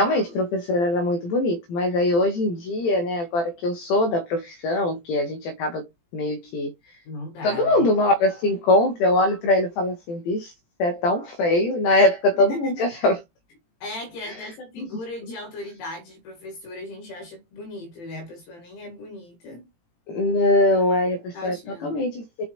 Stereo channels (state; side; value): late; right; 18 ms